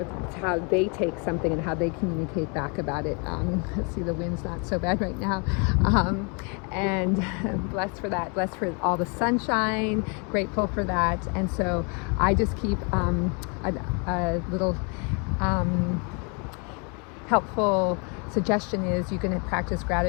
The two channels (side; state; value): right; quieter; 34.6 dB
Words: how they take something and how they communicate back about it. Let's see, the wind's not so bad right now, and blessed for that, blessed for all the sunshine, grateful for that. And so I just keep a little helpful suggestion is you can practice